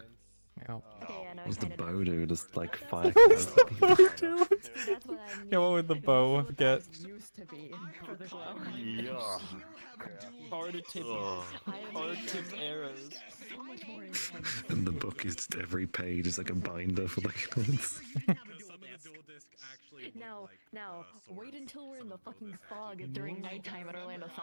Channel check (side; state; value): both; inverted; correlation -1.00